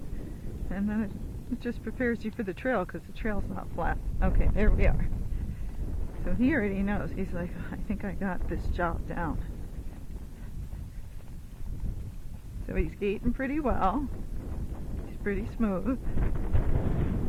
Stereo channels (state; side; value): identical; both; correlation 1.00